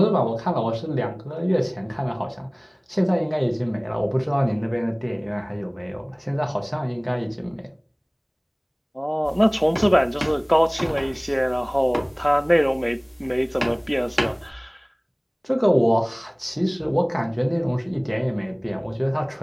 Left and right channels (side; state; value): both; identical; correlation 1.00